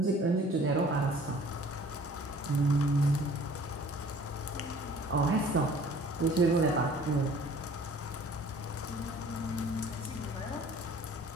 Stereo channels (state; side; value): normal; both; correlation 0.51